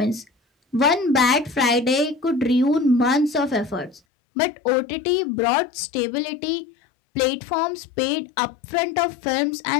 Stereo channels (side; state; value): right; drops out; at 4.0 s